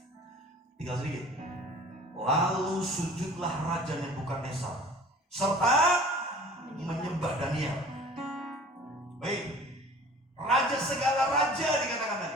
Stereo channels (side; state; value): both; normal; correlation 0.46